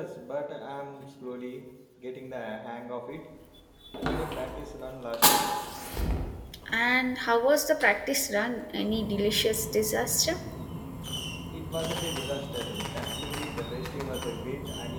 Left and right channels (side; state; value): both; identical; correlation 1.00